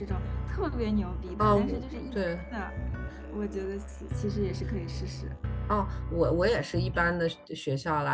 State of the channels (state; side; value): identical; both; correlation 1.00